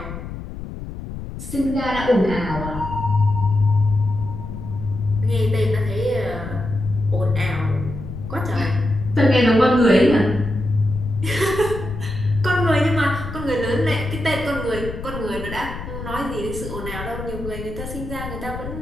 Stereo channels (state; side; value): noise; left; rumble, 9 dB below the sound